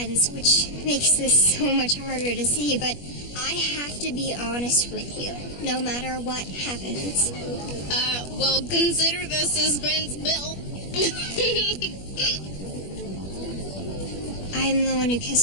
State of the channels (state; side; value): late; right; 21 ms